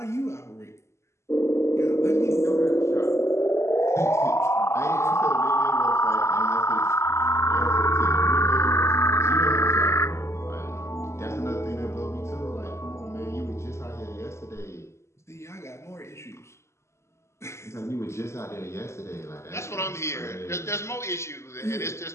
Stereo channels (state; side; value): late; right; 0.13 ms